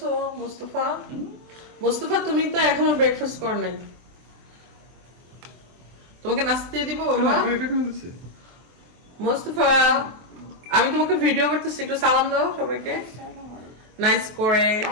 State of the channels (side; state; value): left; late; 24 ms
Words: মুস্তাফা, মুস্তাফা তুমি তো এখনো ব্রেকফাস্ট কর নাই। তোমাকে নাস্তা দিয়ে দিব বাবা। মুস্তাফা, আমি তোমাকে ভিডিও করতেছি, একটু সালাম দাও সবাইকে নাইস করে।